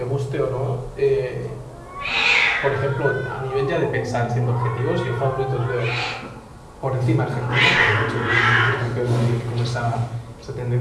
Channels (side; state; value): both; identical; correlation 1.00